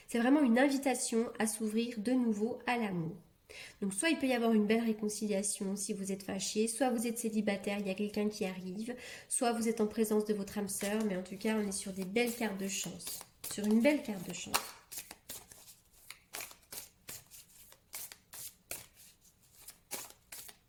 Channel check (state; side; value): identical; both; correlation 1.00